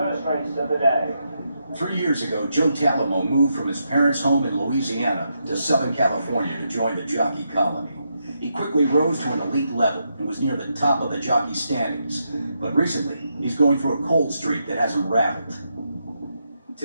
race of the day. 3 years ago, Joe Talamo moved from his parents' home in Louisiana to Southern California to join the jockey colony. He quickly rose to an elite level and was near the top of the jockey standings. But recently, he's going through a cold streak that has him rattled.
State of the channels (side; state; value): both; inverted; correlation -0.82